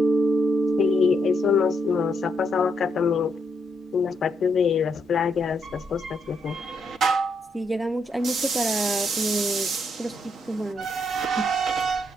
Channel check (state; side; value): normal; both; correlation 0.78